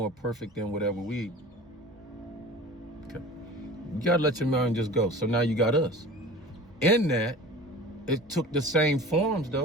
perfect than whatever we eat. Okay. You got to let your mind just go. So now you got us. In that, it took the same forms,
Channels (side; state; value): both; normal; correlation 0.39